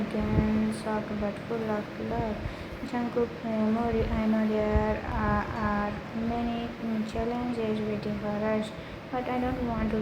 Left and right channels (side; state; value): both; identical; correlation 1.00